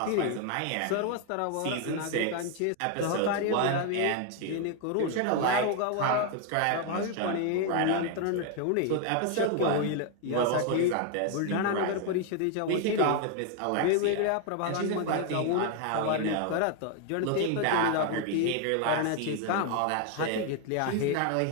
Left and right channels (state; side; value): different; both; correlation 0.01